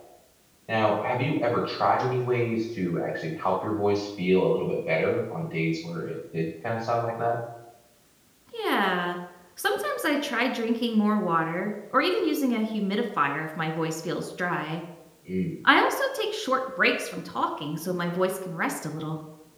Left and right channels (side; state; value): both; identical; correlation 1.00